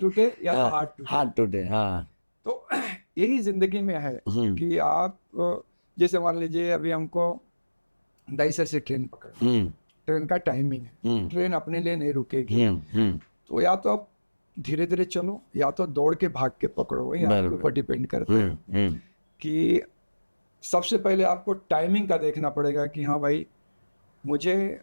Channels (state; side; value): inverted; both; correlation -1.00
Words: या तो हाथ टूटे। हाँ, तो यही जिंदगी में है कि आप जैसे मान लीजिए अभी हमको दाइसर से ट्रेन पकड़ना, ट्रेन का टाइमिंग है, ट्रेन अपने लिए नहीं रुकेगी, तो या तो आप धीरे धीरे चलो या तो दौड़ के भाग के पकड़ो, वही आपके ऊपर डिपेंड करता है। कि सबसे पहले आपको टाइमिंग का देखना पड़ेगा कि हाँ भाई मुझे